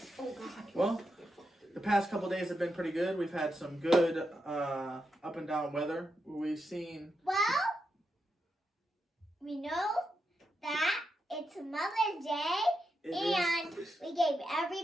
Oh God. Well, the past couple days have been pretty good. We've had some good up and down weather. We've seen. Well, we know that it's Mother's Day, and we gave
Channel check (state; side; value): normal; both; correlation 0.85